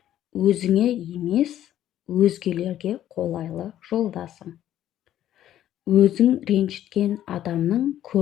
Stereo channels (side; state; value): right; quieter; 12.0 dB